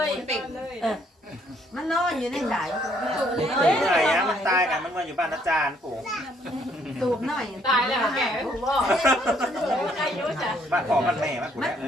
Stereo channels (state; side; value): normal; both; correlation 0.67